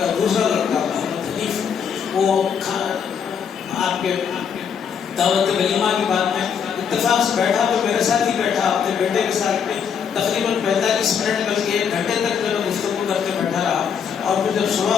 دوسرا لڑکا محمد حنیف وہ آپ کے دعوت ولیمہ کی بات میں اتفاق سے بیٹھا تو میرے ساتھ ہی بیٹھا, اپنے بیٹے کے ساتھ میں تقریباً 45 منٹ بلکہ 1 گھنٹے تک جو ہے گفتگو کرتے بیٹھا رہا. اور پھر جب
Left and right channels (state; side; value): quieter; right; 7.2 dB